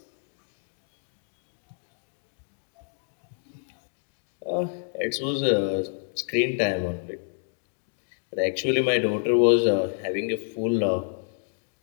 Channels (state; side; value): silent; right; digital silence